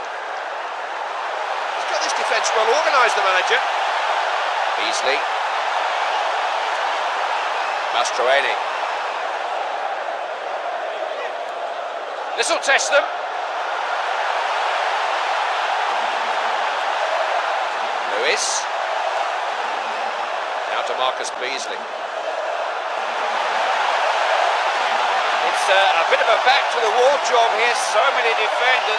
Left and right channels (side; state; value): both; identical; correlation 1.00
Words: He's got this defence well organised, the manager. Beasley. Mastroeni. This will test them. Lewis. Now to Marcus Beasley. It's a bit of a back-to-the-wall job here. So many